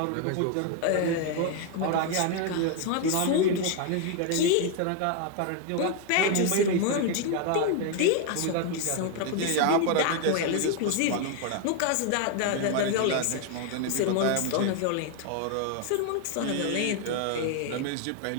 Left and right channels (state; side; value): different; both; correlation 0.01